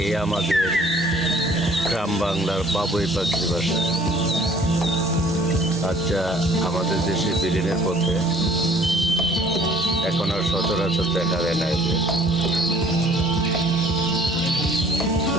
আমাদের গ্রাম বাংলার বাবুই পাখির বাসা। আচ্ছা, আমাদের দেশে বিলীনের পথে এখন আর সচরাচর দেখা যায় না।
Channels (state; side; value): normal; both; correlation 0.55